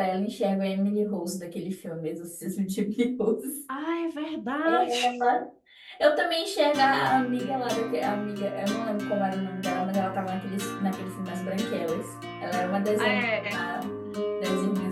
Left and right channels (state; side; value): identical; both; correlation 1.00